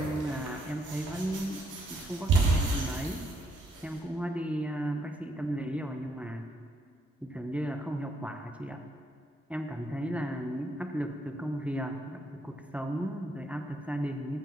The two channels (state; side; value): normal; both; correlation 0.74